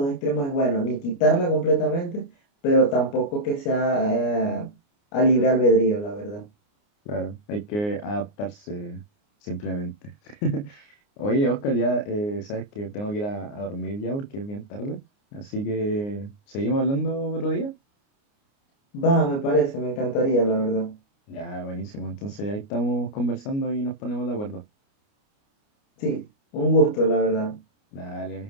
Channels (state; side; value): late; right; 29 ms